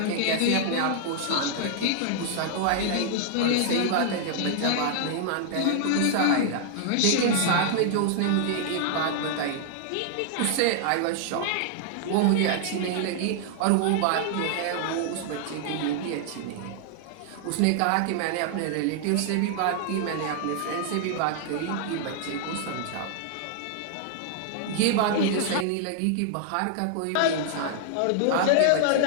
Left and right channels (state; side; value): different; both; correlation -0.01